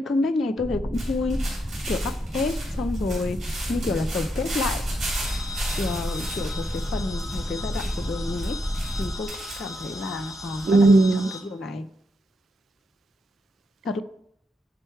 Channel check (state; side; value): normal; both; correlation 0.80